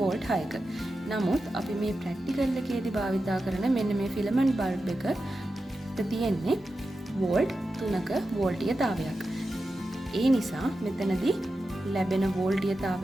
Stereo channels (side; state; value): both; normal; correlation 0.91